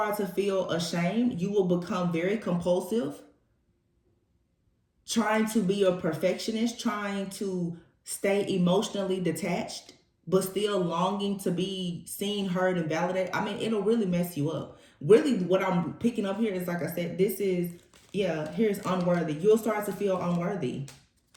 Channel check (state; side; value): identical; both; correlation 1.00